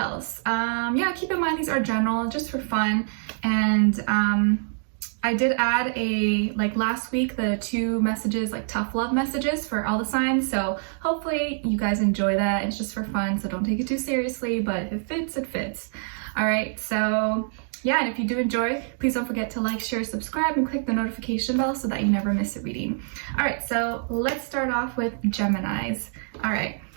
Yeah, keep in mind these are general, just for fun. And I did add like last week, the 2 messages, like tough love messages for all the signs. So hopefully you guys enjoy that. It's just for fun, so don't take it too seriously, but if it fits, it fits. All right, so yeah, and if you do enjoy, please don't forget to like, share, subscribe, and click the notification bell so that you never miss a reading. All right, so let's start off with Geminis. All right.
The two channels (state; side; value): silent; left; 61 dB below the other